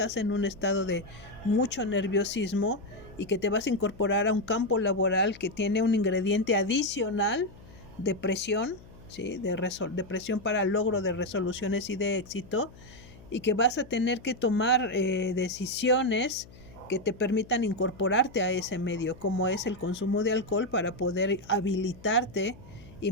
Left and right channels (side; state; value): left; noise; hum, 21 dB below the sound